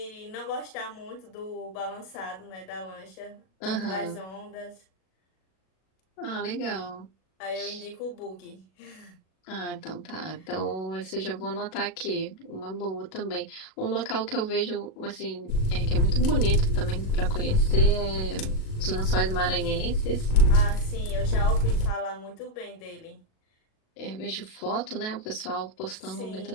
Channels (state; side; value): late; right; 37 ms